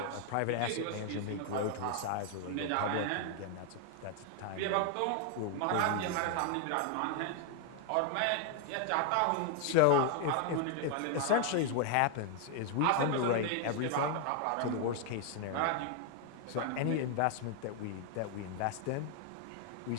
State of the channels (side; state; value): both; different; correlation 0.00